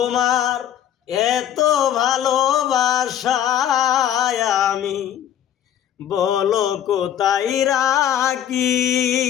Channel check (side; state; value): right; quieter; 10.4 dB